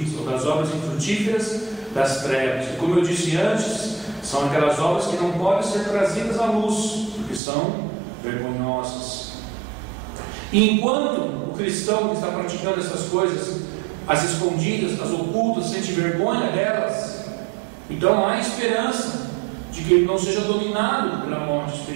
ou das obras infrutíferas das trevas. E como eu disse antes, são aquelas obras que não podem ser trazidas à luz, porque são vergonhosas. E enquanto o cristão que está praticando essas coisas, as escondidas, as ocultas, sente vergonha delas, então há esperança de que ele não seja dominado pela morte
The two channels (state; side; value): drops out; left; at 7.4 s